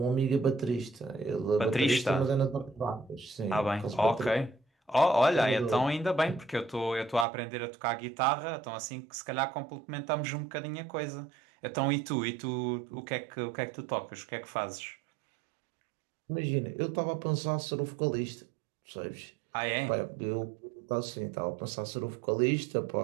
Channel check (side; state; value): left; drops out; at 7.2 s